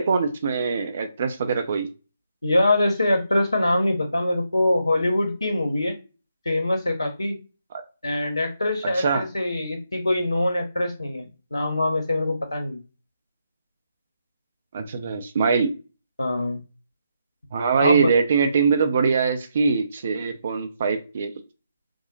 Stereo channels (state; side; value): inverted; both; correlation -0.80